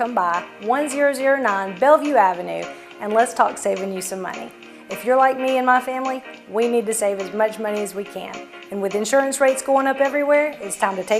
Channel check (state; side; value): identical; both; correlation 1.00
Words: by 1009 Bellevue Avenue and let's talk saving you some money. If you're like me and my family, we need to save as much money as we can. And with insurance rates going up everywhere, it's time to